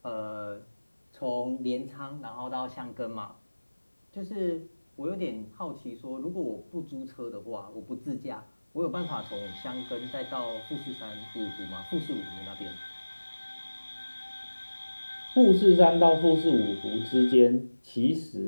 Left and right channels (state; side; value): inverted; both; correlation -1.00